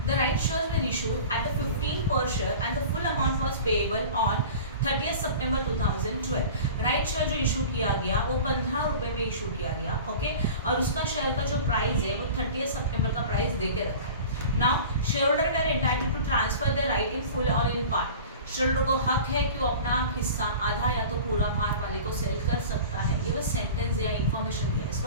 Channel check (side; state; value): both; inverted; correlation -0.38